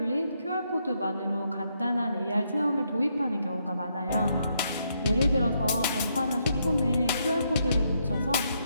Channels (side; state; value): both; inverted; correlation -0.76